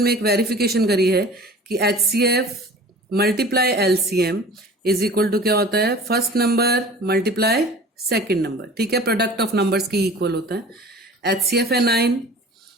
में एक वेरिफिकेशन करी है कि HCF multiply LCM is equal to क्या होता है, first number multiply second number, ठीक है, प्रोडक्ट ऑफ नंबर्स की इक्वल होता है। HCF है 9,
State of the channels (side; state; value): both; normal; correlation 0.42